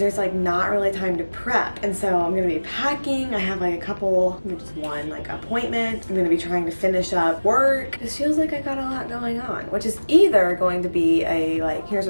there's like not really time to prep. And so I'm gonna be packing. I have like a couple, just one like appointment. I'm gonna be trying to finish up work. This feels like I got a lot going on, which is either going to be a like, here's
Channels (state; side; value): inverted; both; correlation -1.00